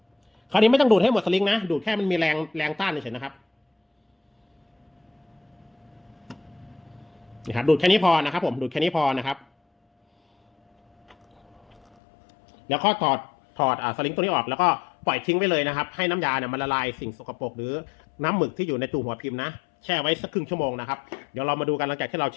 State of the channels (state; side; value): drops out; right; at 11.8 s